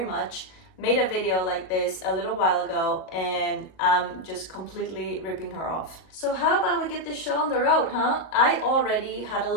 much, made a video like this a little while ago, and I'm just completely ripping her off. So how about we get this show on the road, huh? I already had a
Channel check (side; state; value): right; late; 38 ms